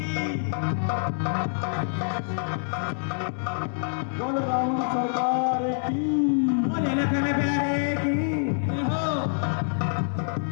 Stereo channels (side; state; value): right; silent; 61 dB below the other